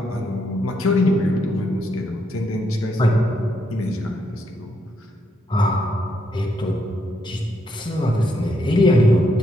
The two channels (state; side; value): normal; both; correlation 0.77